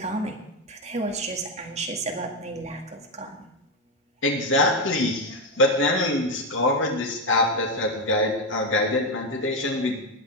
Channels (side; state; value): both; normal; correlation 0.08